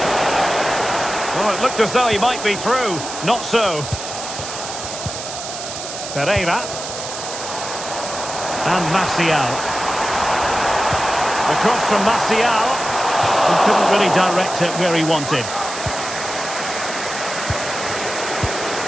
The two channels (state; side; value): noise; right; hiss, 8 dB below the sound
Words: Oh, it looked as though he might be through. Not so. Pereira. And Martial. The cross from Martial. He couldn't really direct it where he wanted.